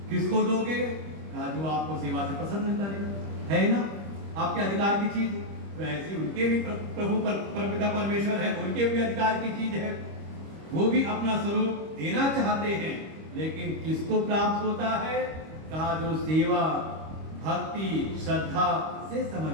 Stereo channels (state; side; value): late; left; 25 ms